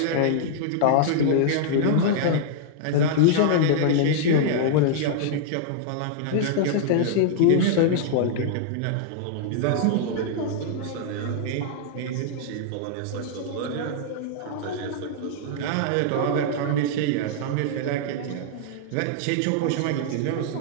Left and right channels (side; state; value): both; different; correlation -0.01